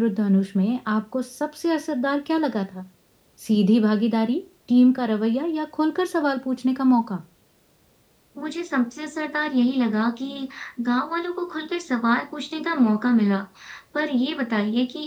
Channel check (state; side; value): identical; both; correlation 1.00